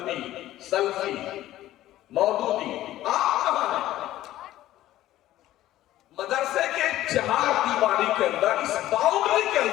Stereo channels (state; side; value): quieter; right; 14.4 dB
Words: سلفی، مودودی، آپ کہاں ہیں؟ مدرسے کے چہار دیواری کے اندر، اس باؤنڈری کے